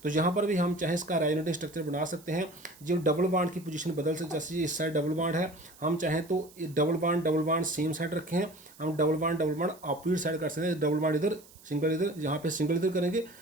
तो यहाँ पर भी हम चाहें इसका रेजोनेटिंग स्ट्रक्चर बना सकते हैं। जो डबल बॉन्ड की पोजीशन बदल सकते, जैसे इस साइड डबल बॉन्ड है, हम चाहें तो डबल बॉन्ड सेम साइड रखें, हम डबल बॉन्ड अपोजिट साइड कर सकते हैं। डबल बॉन्ड इधर, सिंगल इधर, यहाँ पे सिंगल इधर करेंगे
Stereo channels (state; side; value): noise; right; hiss, 23 dB below the sound